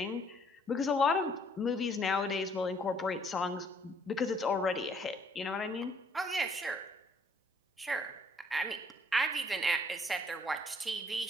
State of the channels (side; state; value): both; normal; correlation 0.64